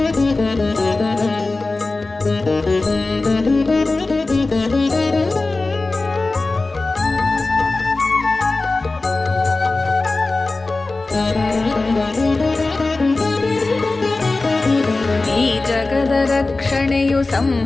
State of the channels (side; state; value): right; quieter; 3.4 dB